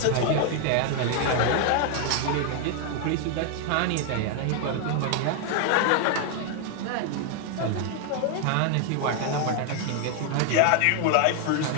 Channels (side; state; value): both; different; correlation 0.00